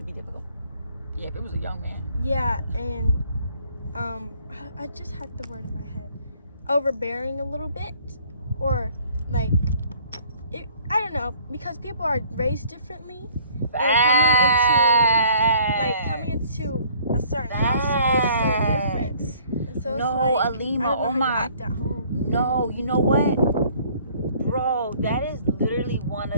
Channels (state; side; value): inverted; both; correlation -0.57